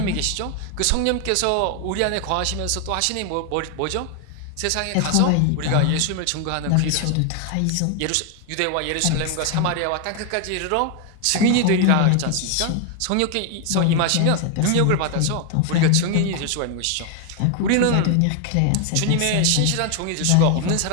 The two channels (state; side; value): different; both; correlation 0.00